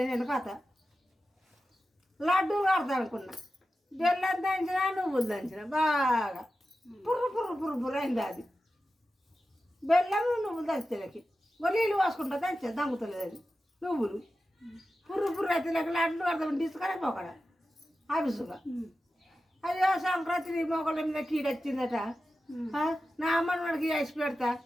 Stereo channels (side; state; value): both; normal; correlation 0.93